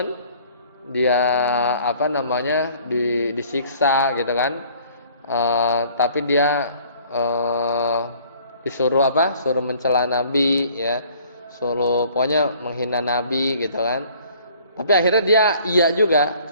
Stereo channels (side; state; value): both; inverted; correlation -0.55